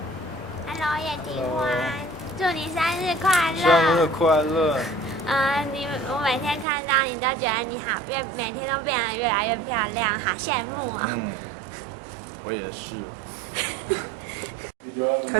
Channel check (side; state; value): left; drops out; at 6.7 s